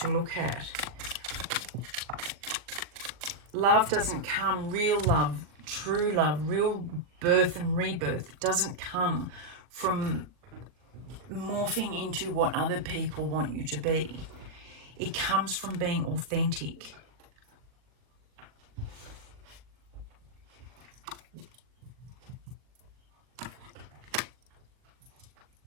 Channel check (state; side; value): late; left; 40 ms